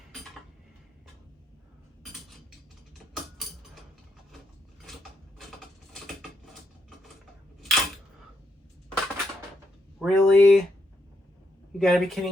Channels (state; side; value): normal; both; correlation 0.80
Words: Really? You gotta be